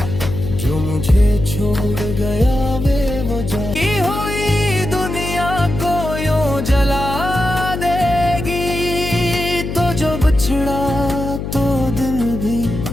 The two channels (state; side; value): noise; left; hum, 5 dB below the sound